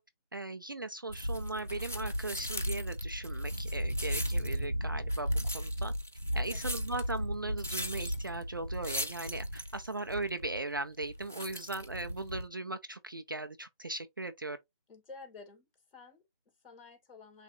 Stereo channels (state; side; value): inverted; both; correlation -0.64